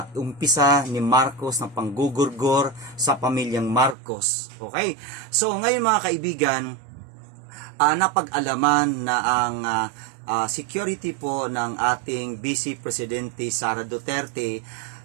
umpisa ni Marcos ng panggugurgor sa pamilyang Marcos. Okay? So ngayon mga kaibigan, napag-alaman na ang security po ng ating Vice Presidente Sara Duterte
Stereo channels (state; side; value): drops out; left; at 4.0 s